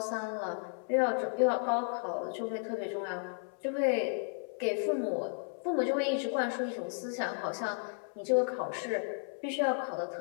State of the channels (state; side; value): silent; right; 55 dB below the other